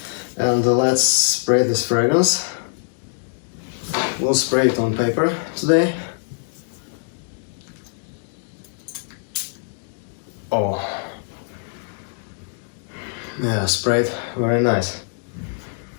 and let's spray this fragrance. We'll spray it on paper today. Oh, yeah, sprayed, very nice.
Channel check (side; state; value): right; silent; digital silence